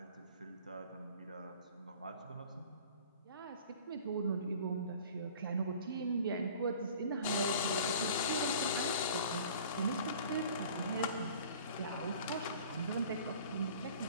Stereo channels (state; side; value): inverted; both; correlation -0.46